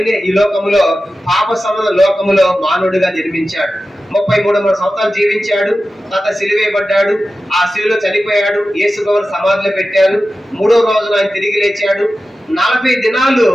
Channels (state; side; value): normal; both; correlation 0.94